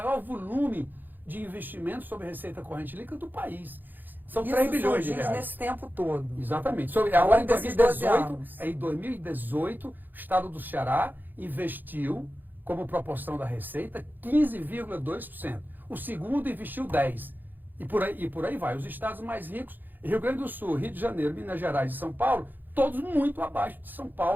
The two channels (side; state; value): left; late; 0.089 ms